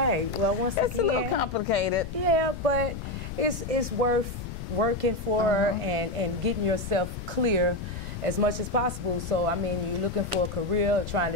Well, once again, it's a little complicated. Yeah, but it's worth working for and getting yourself clear. as much as possible. So, I mean, you're looking for a career, trying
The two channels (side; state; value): left; noise; rumble, 8 dB below the sound